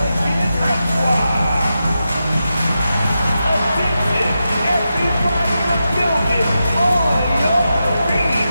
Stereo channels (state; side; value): inverted; both; correlation -0.89